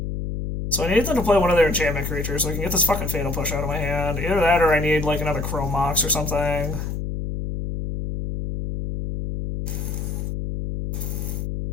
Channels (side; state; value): left; noise; hum, 4 dB below the sound